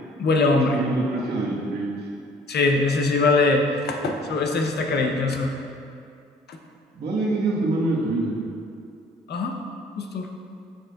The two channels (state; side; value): normal; both; correlation 0.54